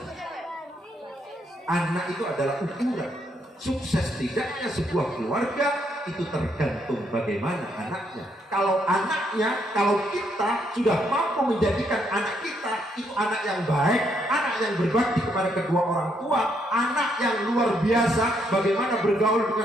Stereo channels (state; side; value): normal; both; correlation 0.74